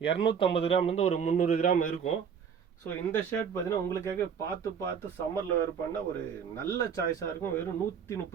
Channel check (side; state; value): left; quieter; 7.0 dB